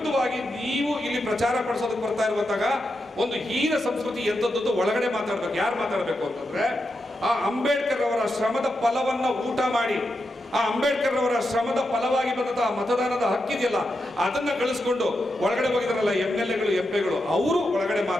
ನೀವು ಇಲ್ಲಿ ಪ್ರಚಾರ ಪಡಿಸೋದಕ್ಕೆ ಬರ್ತಾ ಇರುವಂತಾಗ ಒಂದು ಹೀನ ಸಂಸ್ಕೃತಿ ಎಂತದ್ದು ಒಳಗಡೆ ಮಾತಾಡ್ಬೇಕು. ಯಾರು ಮಾತಾಡಬೇಕು ಅಂತಂದ್ರೆ ಆ ಅಂಬೇಡ್ಕರ್ ಅವರ ಶ್ರಮದ ಫಲವನ್ನ ಊಟ ಮಾಡಿ, ಆ ಅಂಬೇಡ್ಕರ್ ಅವರ ಶ್ರಮದ ಫಲವಾಗಿ ಬಂದಂತಹ ಮತದಾನದ ಹಕ್ಕಿದೆಯಲ್ಲ ಅದನ್ನ ಗಳಿಸ್ಕೊಂಡು ಒಳಗಡೆ ಹೋಗಿದಾರಲ್ಲ MLAಗಳು MP ಗಳು, ಅವರು ಒಳಗಡೆ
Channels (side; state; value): both; normal; correlation 0.87